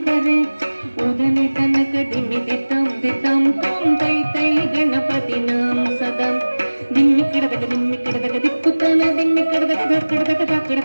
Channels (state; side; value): inverted; both; correlation -1.00